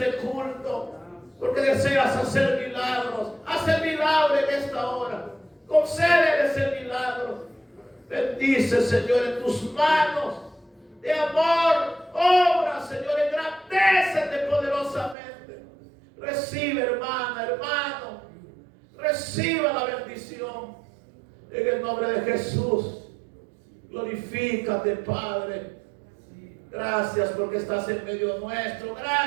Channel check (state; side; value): drops out; left; at 15.2 s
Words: culto, porque deseas hacer milagros. Haz el milagro en esta hora. Concédeles el milagro. Bendice, Señor, en tus manos de amor. Obra, Señor, engrandécete poderosamente. Recibe, hermana, hermano. Reciba la bendición. En el nombre de Jesús. Glorifícate, Padre. Gracias porque estás en medio nuestro.